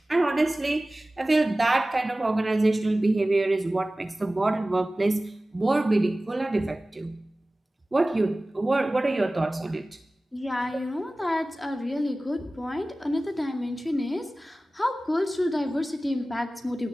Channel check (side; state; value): both; normal; correlation 0.97